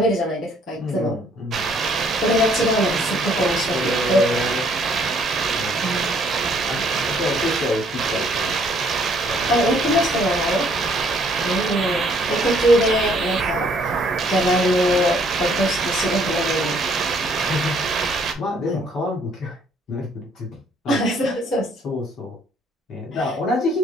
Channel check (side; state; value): both; normal; correlation 0.64